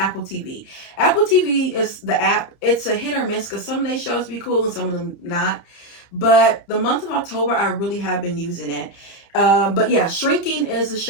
TV. Apple TV is the app. It's a hit or miss because some of these shows be cool and some of them not. But the month of October, I really have been using it. But yeah, Shrinking is a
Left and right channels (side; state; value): right; late; 30 ms